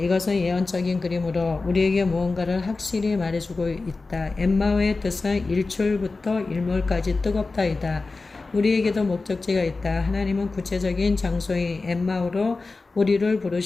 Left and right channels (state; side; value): quieter; right; 3.7 dB